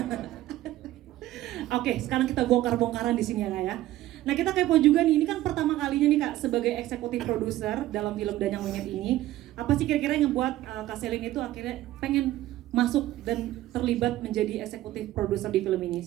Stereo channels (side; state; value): left; quieter; 15.1 dB